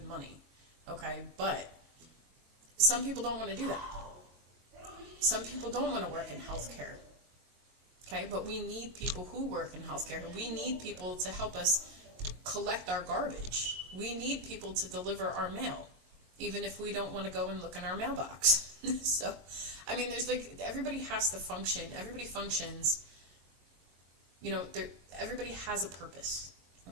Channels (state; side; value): late; left; 22 ms